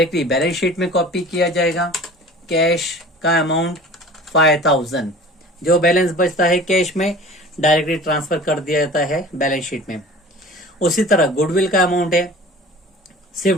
बैलेंस शीट में कॉपी किया जाएगा। कैश का अमाउंट 5000, जो बैलेंस बचता है कैश में डायरेक्टली ट्रांसफर कर दिया जाता है बैलेंस शीट में। उसी तरह गुडविल का अमाउंट है, सिर्फ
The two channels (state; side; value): normal; both; correlation 0.42